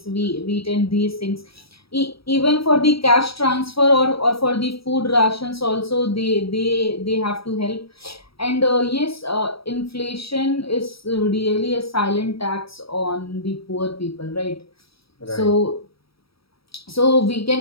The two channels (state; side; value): late; right; 0.76 ms